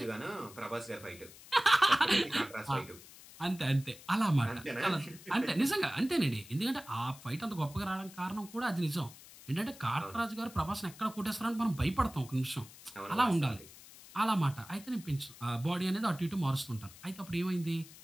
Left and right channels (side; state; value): left; noise; hiss, 19 dB below the sound